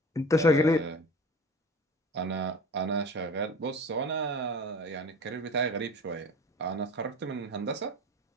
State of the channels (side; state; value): both; normal; correlation 0.38